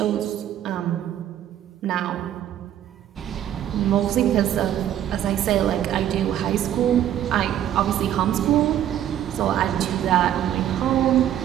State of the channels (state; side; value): quieter; left; 11.1 dB